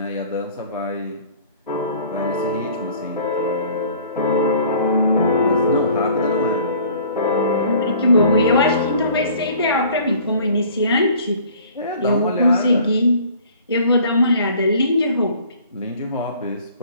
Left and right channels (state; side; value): inverted; both; correlation -0.51